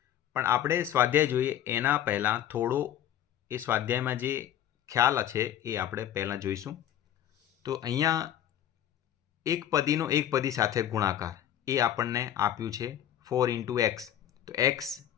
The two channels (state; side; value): quieter; right; 11.1 dB